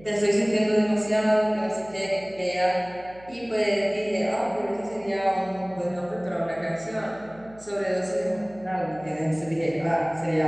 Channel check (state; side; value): noise; right; hum, 23 dB below the sound